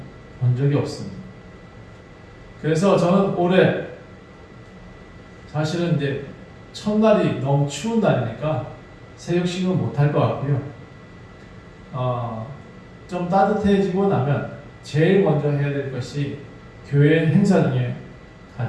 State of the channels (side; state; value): both; identical; correlation 1.00